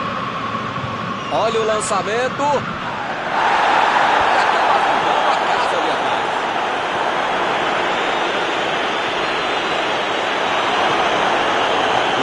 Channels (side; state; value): both; identical; correlation 1.00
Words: Olha o lançamento. E acaba arrumando a casa ali atrás.